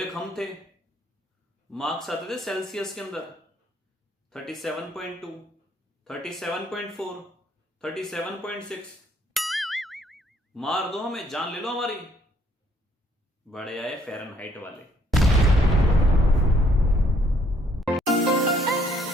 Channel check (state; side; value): normal; both; correlation 0.66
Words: एक हम थे, मार्क्स आते थे सेल्सियस के अंदर 37.2, 37.4, 37.6। मार दो हमें, जान ले लो हमारी। बड़े आए फ़ारेनहाइट वाले।